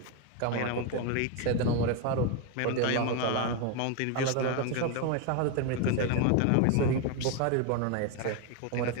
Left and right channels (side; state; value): both; different; correlation 0.02